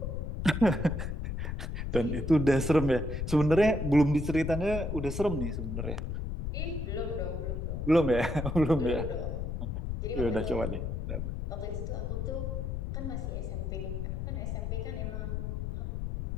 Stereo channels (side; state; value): left; noise; rumble, 3 dB below the sound